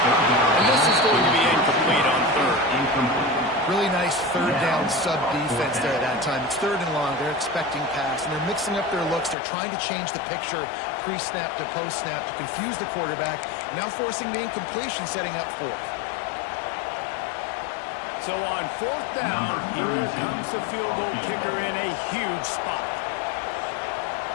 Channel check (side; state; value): right; drops out; at 9.3 s